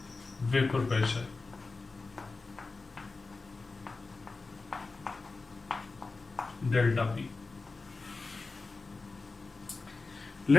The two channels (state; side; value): quieter; right; 3.8 dB